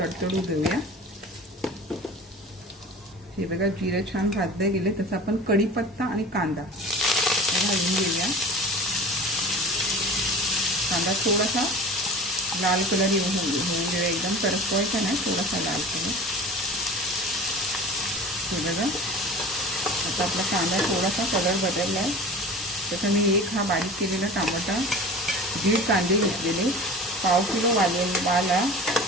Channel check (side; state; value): both; normal; correlation 0.38